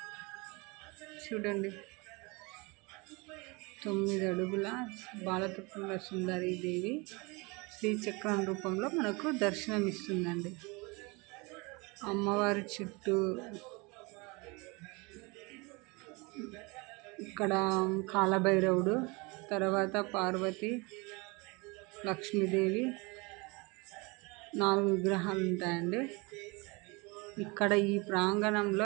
చూడండి. 9 అడుగుల బాలత్రిపుర సుందరి దేవి శ్రీచక్రం రూపంలో మనకు దర్శనమిస్తుందండి. అమ్మవారి చుట్టూ ఇక్కడ కాలభైరవుడు, తర్వాత పార్వతి, లక్ష్మీదేవి 4 విగ్రహాలు ఉంటాయండి. ఇక్కడ ఈ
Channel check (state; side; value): quieter; left; 27.0 dB